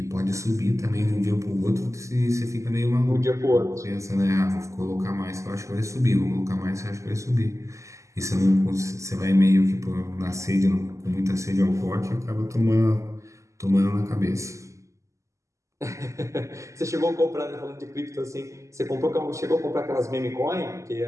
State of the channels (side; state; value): left; late; 0.15 ms